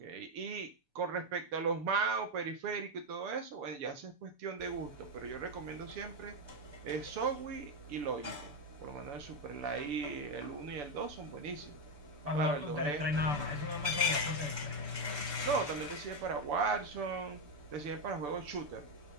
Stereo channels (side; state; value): left; late; 6.9 ms